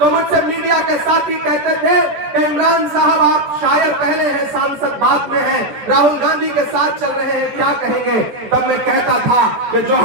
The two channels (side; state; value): left; late; 14 ms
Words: मुझसे मीडिया के साथी कहते थे कि इमरान साहब, आप शायर पहले हैं, सांसद बाद में हैं, राहुल गांधी के साथ चल रहे हैं, क्या कहेंगे? तब मैं कहता था कि जो